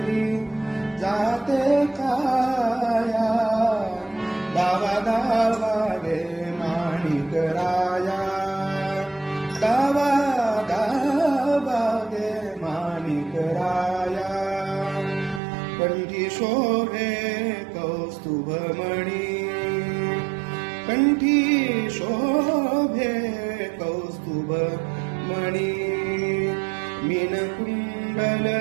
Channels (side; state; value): left; drops out; at 15.4 s